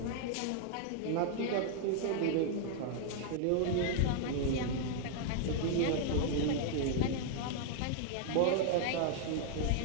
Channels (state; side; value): different; both; correlation 0.00